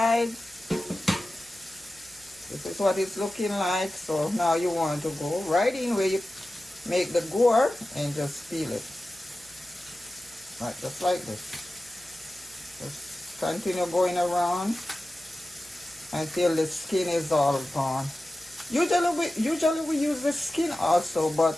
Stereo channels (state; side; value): noise; left; hum, 29 dB below the sound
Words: This is what it's looking like. So now you want to go right in where you make the gore and just peel it. Right, just like this. Just continue going around until the skin is all gone. Usually we use the skin also, but